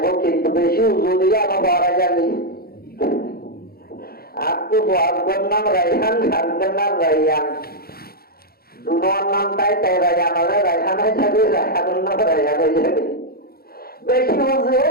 वो किंतु बेशी उजुलिया में बारा जानी आपको बहुत नाम रैहान हरदन नाम रैहान दोनों नाम ताई ताई रैहान वाले रैहान है जब रैहान नाम रैहान हो जाए बेशी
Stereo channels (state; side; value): late; right; 0.44 ms